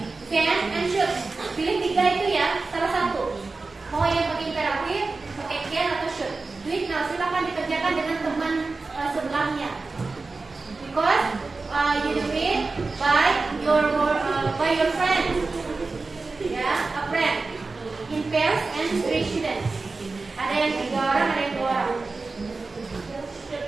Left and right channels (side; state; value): left; quieter; 3.8 dB